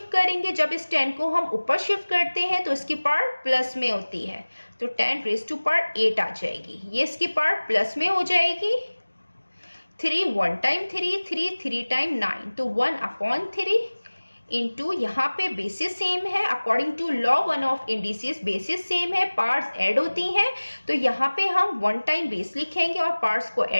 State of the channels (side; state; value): both; inverted; correlation -1.00